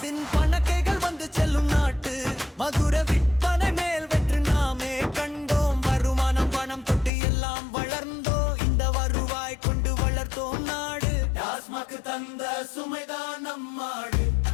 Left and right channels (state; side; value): drops out; right; at 7.1 s